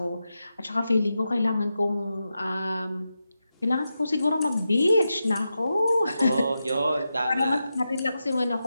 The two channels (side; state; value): both; inverted; correlation -0.89